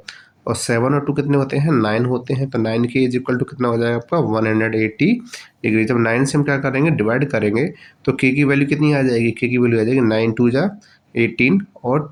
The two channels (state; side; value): identical; both; correlation 1.00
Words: और 7 और 2 कितने होते हैं? 9 होते हैं। तो 9 के इज इक्वल टू कितना हो जाएगा आपका? 180 डिग्री। जब 9 से हम क्या करेंगे? डिवाइड करेंगे तो के की वैल्यू कितनी आ जाएगी? के की वैल्यू आ जाएगी 9 2 जा 18